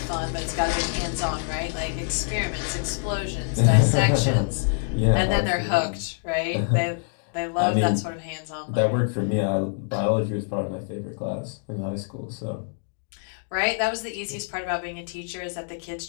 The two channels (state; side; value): silent; right; digital silence